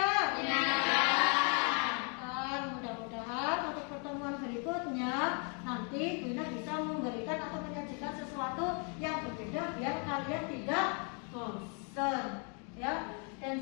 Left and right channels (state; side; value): quieter; right; 38.3 dB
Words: Menyenangkan. Mudah-mudahan untuk pertemuan berikutnya nanti Kuina bisa memberikan atau menyajikan sesuatu yang berbeda biar kalian tidak bosan. Ya, dan